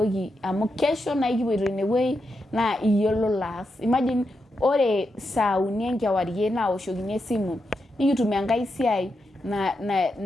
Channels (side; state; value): both; normal; correlation 0.85